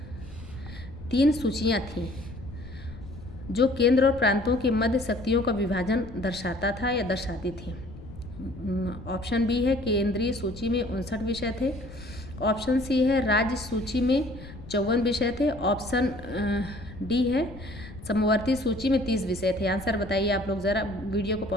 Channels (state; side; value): noise; left; rumble, 15 dB below the sound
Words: 3 सूचियाँ थीं जो केंद्र और प्रांतों के मध्य शक्तियों का विभाजन दर्शाता था या दर्शाती थी। ऑप्शन बी है केंद्रीय सूची में 59 विषय थे। ऑप्शन सी है राज्य सूची में 54 विषय थे। ऑप्शन डी है समवर्ती सूची में 30 विषय थे। आंसर बताइए आप लोग, ज़रा वीडियो को